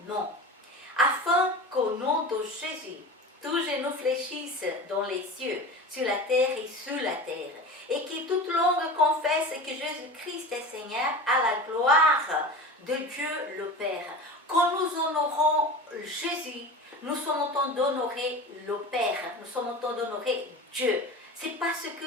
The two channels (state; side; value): normal; both; correlation 0.32